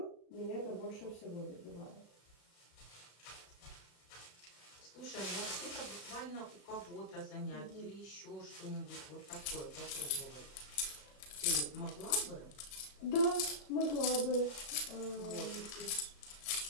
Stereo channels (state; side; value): late; right; 34 ms